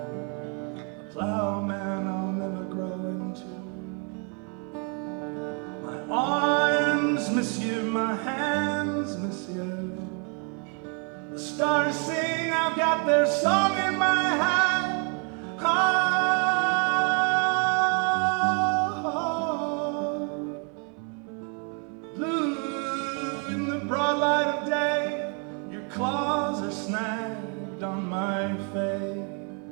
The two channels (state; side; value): quieter; left; 37.9 dB